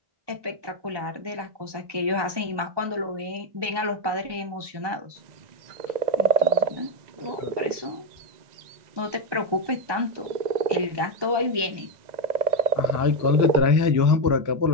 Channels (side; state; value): left; late; 1.2 ms